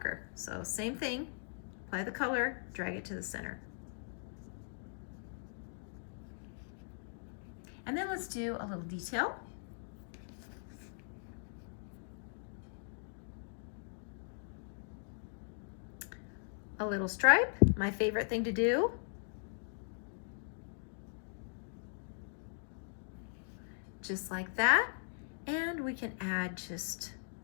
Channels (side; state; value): right; silent; digital silence